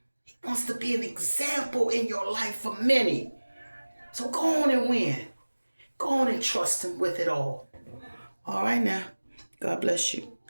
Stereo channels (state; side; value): inverted; both; correlation -1.00